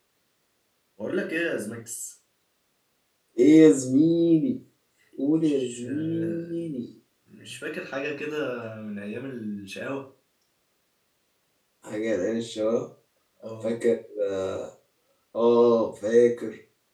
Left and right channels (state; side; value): identical; both; correlation 1.00